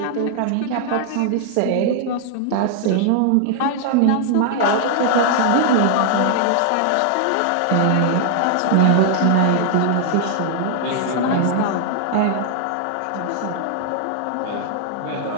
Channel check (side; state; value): both; different; correlation 0.00